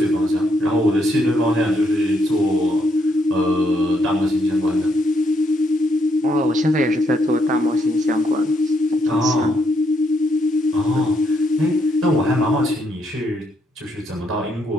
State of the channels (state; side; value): normal; both; correlation 0.75